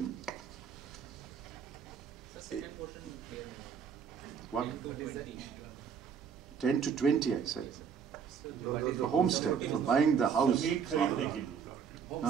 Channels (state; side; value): quieter; left; 6.9 dB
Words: what? 10 to 20, I said. For homestead, for buying the house.